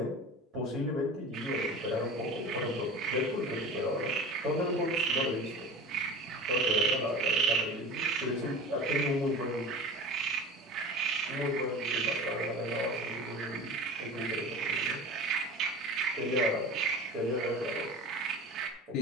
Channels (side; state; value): both; normal; correlation 0.35